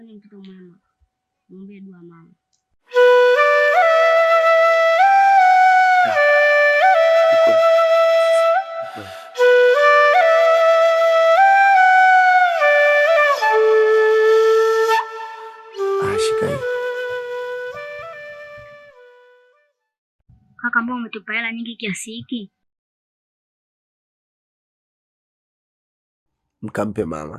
ni mtoto mwema, muombe dua mama. Shika hii. Kaka, mbona umetupa hela nyingi kiasi hiki? Mkampe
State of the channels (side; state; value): both; identical; correlation 1.00